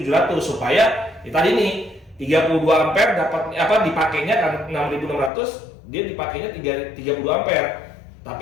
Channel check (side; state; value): right; drops out; at 5.3 s